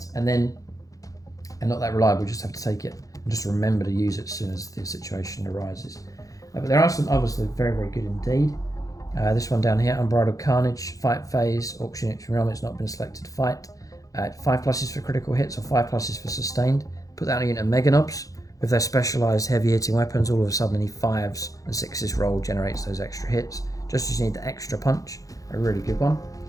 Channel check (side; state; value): right; late; 0.17 ms